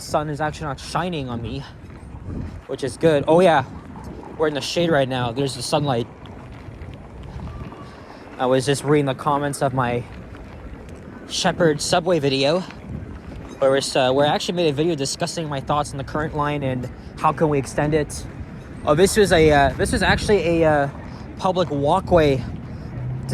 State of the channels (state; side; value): identical; both; correlation 1.00